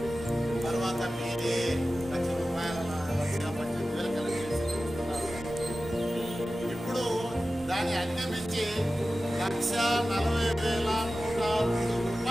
తర్వాత మీరే ₹1,18,000 కలెక్ట్ చేసి చూస్తున్నారు. ఇప్పుడు దాన్ని అధిగమించి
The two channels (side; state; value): both; normal; correlation 0.95